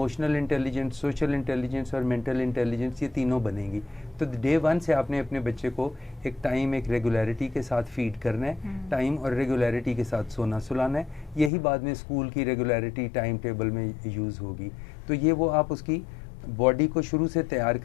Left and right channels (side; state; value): right; drops out; at 11.5 s